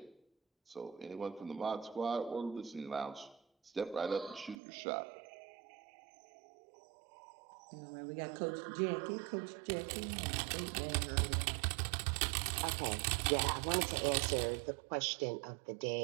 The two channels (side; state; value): left; drops out; at 4.5 s